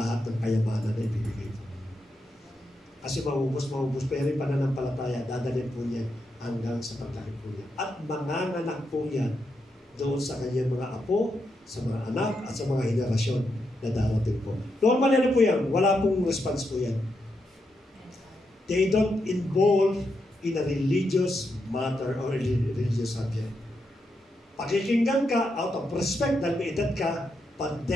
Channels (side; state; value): both; normal; correlation 0.83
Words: ng kayamanan na ibibigay po. Kasi maubos, pero yung pananampalataya, dadalhin po niya hanggang sa paglaki po niya. At manganganak po yan doon sa kanyang mga apo, sa mga anak, at sa mga henerasyon na darating po. Normal yan po yan. Wala pong response po yan. They don't involve in a religious matter or religious subject. Pakikinggan ka out of respect dahil may edad ka, but